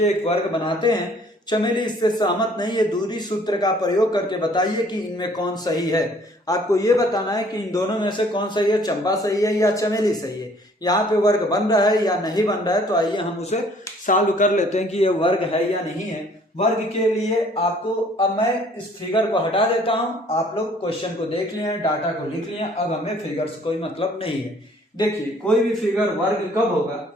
एक वर्ग बनाते हैं। चमेली इससे सहमत नहीं है, दूरी सूत्र का प्रयोग करके बताइए कि इनमें कौन सही है। आपको ये बताना है कि इन दोनों में से कौन सही है, चंपा सही है या चमेली सही है। यहाँ पे वर्ग बन रहा है या नहीं बन रहा है, तो आइए हम उसे सॉल्व कर लेते हैं कि ये वर्ग है या नहीं है। वर्ग के लिए आपको, अब मैं इस फिगर को हटा देता हूं, आप लोग क्वेश्चन को देख लिए, डाटा को लिख लिए, अब हमें फिगर से कोई मतलब नहीं है। देखिए कोई भी फिगर वर्ग कब होगा,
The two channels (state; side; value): normal; both; correlation 0.58